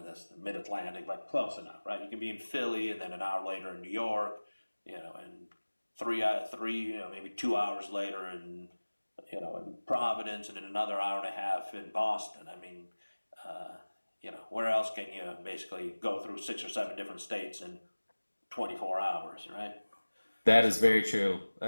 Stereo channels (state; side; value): inverted; both; correlation -1.00